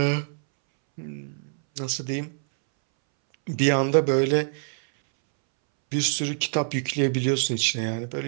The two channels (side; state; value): left; silent; 62 dB below the other